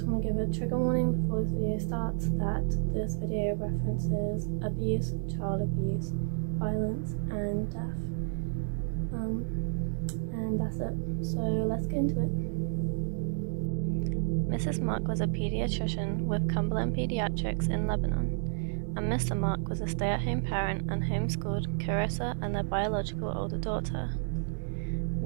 want to give a trigger warning before this video starts that this video references abuse, child abuse, violence and death. And that's it. So let's get into it. Mrs. Mark was a pediatrician with Cumberland Pediatrics in Lebanon, and Mr. Mark was a stay-at-home parent and homeschooled Kairissa and their biological older daughter.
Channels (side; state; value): left; silent; digital silence